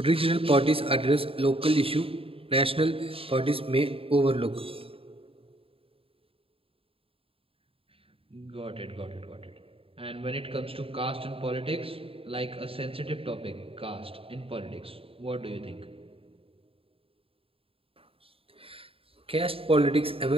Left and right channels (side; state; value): left; late; 0.27 ms